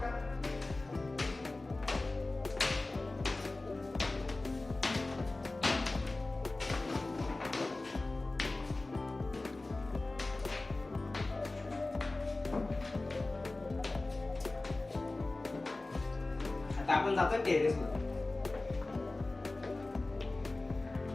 आता आपण जातो टेरेस वर.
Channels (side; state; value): right; quieter; 3.1 dB